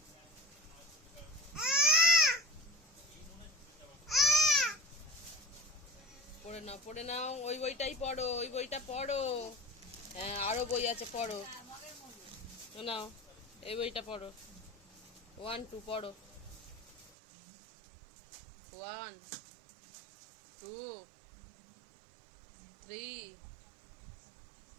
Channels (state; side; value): drops out; left; at 17.1 s